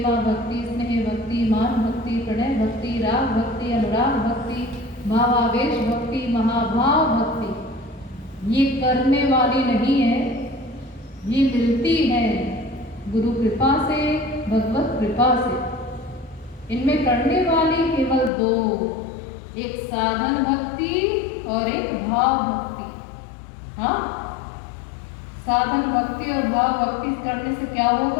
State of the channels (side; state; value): right; drops out; at 18.3 s